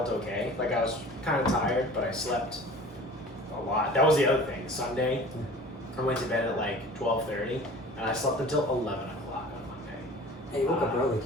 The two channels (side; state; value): both; normal; correlation 0.42